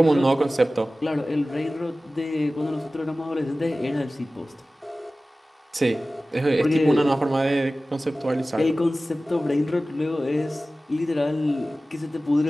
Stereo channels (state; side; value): normal; both; correlation 0.96